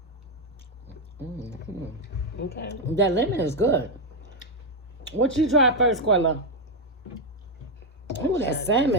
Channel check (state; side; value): normal; both; correlation 0.04